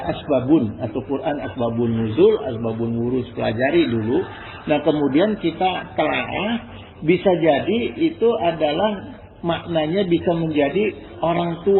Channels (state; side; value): identical; both; correlation 1.00